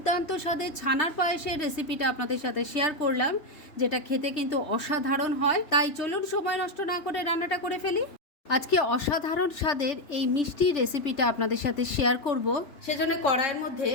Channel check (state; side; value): late; right; 3.2 ms